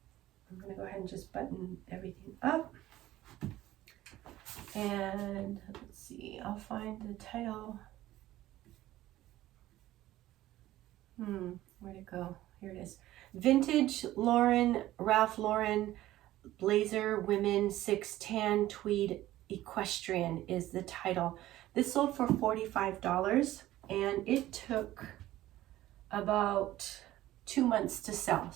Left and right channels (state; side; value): quieter; left; 15.1 dB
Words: I'm gonna go ahead and just button everything up. And let's see, I'll find the title. Where'd it go? Here it is. Vintage Ralph Lauren blazer, women 6 tan tweed equestrian is the title. This sold for $45, and it took about 2 months to sell.